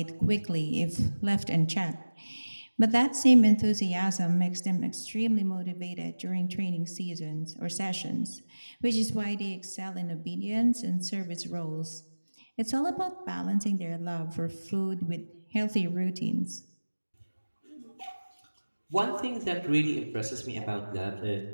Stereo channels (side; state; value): both; inverted; correlation -1.00